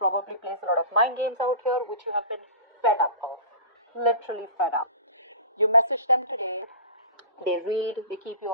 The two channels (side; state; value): both; inverted; correlation -0.36